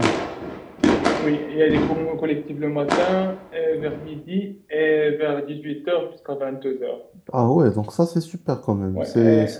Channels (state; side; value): identical; both; correlation 1.00